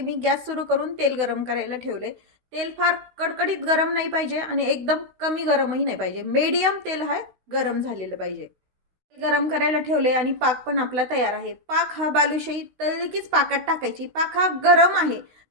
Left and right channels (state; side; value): late; left; 16 ms